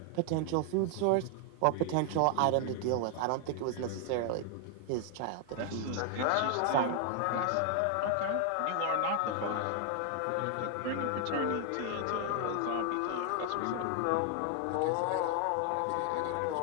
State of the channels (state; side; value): different; both; correlation 0.00